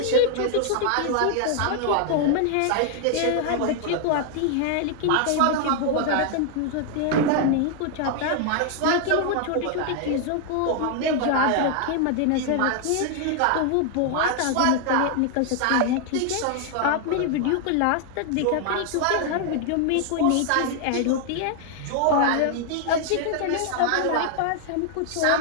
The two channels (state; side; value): different; both; correlation 0.00